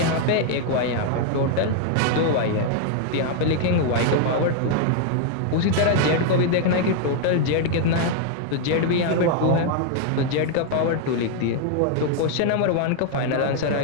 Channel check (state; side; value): different; both; correlation 0.00